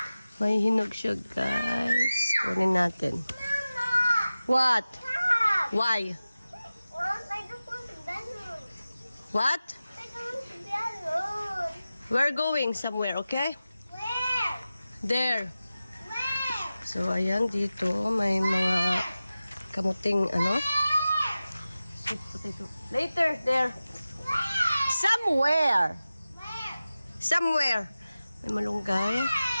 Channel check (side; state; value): both; inverted; correlation -0.95